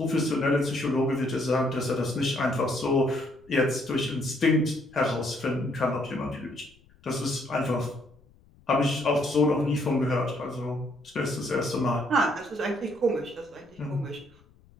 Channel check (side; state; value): left; noise; rumble, 29 dB below the sound